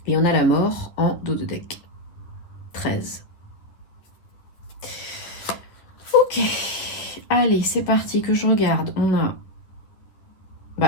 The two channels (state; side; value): late; right; 10 ms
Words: Et on a la mort en dos de deck. 13. Ok. Allez, c'est parti que je regarde. On a